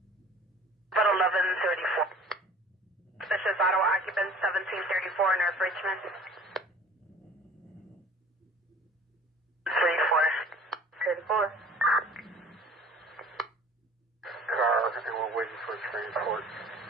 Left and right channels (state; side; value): normal; both; correlation 0.47